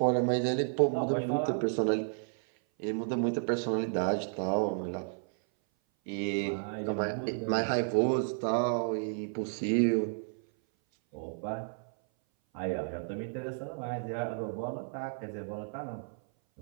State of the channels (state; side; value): silent; left; 56 dB below the other